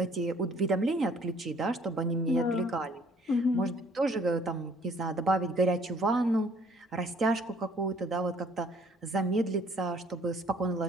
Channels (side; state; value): both; normal; correlation 0.59